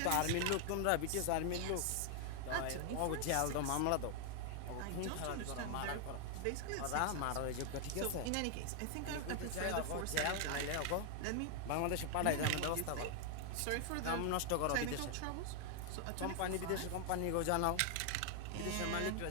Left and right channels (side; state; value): both; different; correlation 0.00